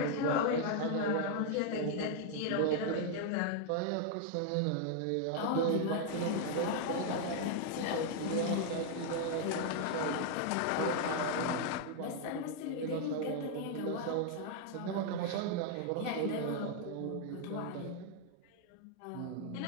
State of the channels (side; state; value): both; different; correlation 0.00